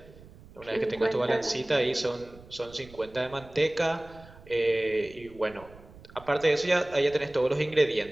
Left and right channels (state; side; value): noise; right; rumble, 21 dB below the sound